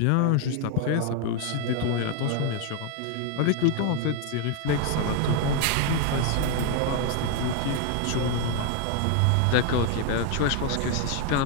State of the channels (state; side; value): different; both; correlation 0.01